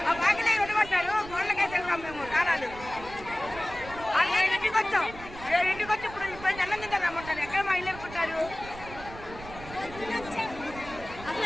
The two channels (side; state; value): right; noise; rumble, 15 dB below the sound